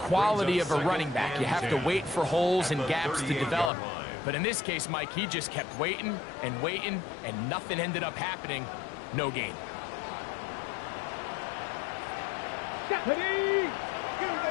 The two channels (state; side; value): drops out; right; at 3.7 s